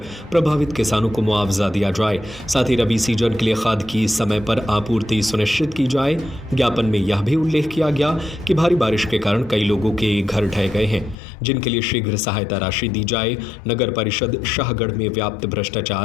प्रभावित किसानों को मुआवजा दिया जाए। साथ ही रबी सीजन के लिए खाद की समय पर आपूर्ति सुनिश्चित की जाए। ज्ञापन में यह भी उल्लेख किया गया कि भारी बारिश के कारण कई लोगों के घर ढह गए हैं, जिनके लिए शीघ्र सहायता राशि दी जाए। नगर परिषद शाहगढ़ में व्याप्त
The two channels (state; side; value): drops out; right; at 11.2 s